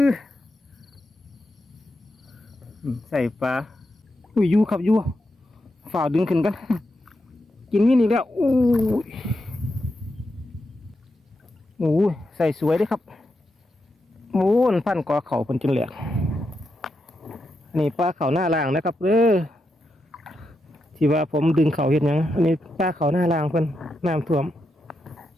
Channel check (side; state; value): both; normal; correlation 0.85